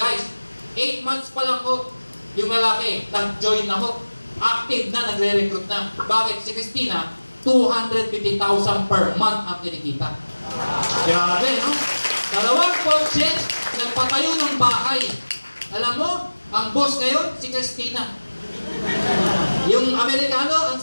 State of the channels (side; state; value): both; inverted; correlation -1.00